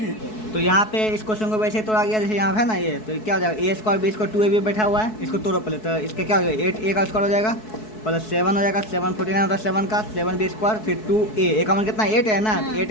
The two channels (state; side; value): late; right; 4.6 ms